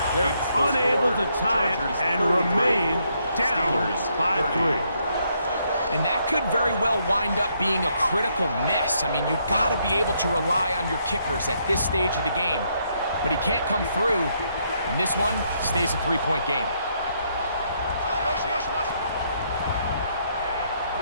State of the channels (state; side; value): inverted; both; correlation -0.74